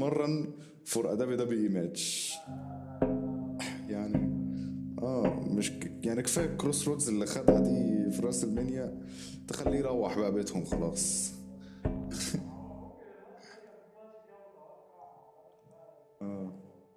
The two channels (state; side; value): identical; both; correlation 1.00